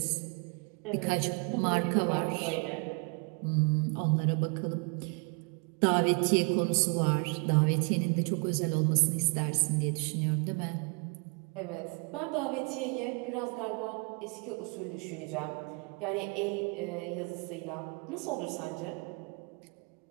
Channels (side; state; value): left; quieter; 33.5 dB